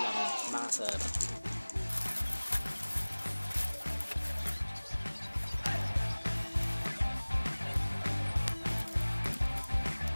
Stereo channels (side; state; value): both; inverted; correlation -1.00